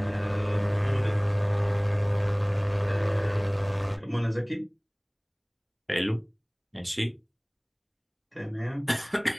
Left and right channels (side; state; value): both; identical; correlation 1.00